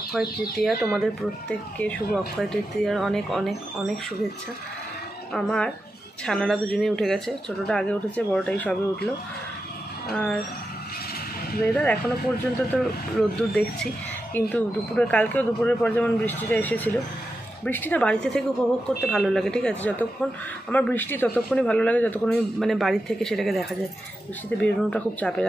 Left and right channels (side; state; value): both; normal; correlation 0.89